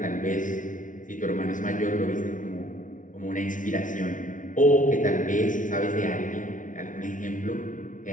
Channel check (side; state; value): right; late; 0.38 ms